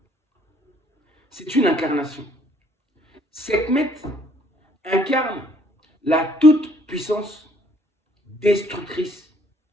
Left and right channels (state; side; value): normal; both; correlation 0.63